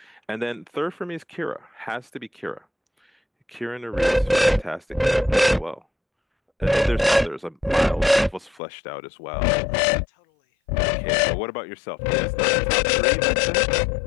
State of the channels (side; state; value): right; drops out; at 8.6 s